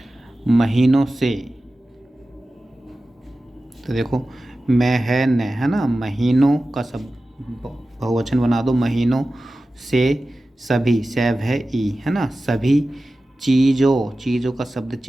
महीनों से, तो देखो मैं है न, है ना, महीनों का सब बहुवचन बना दो, महीनों से सभी, सैव है ई, है ना, सभी चीज़ों, चीज़ों का शब्द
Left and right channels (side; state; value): both; normal; correlation 0.95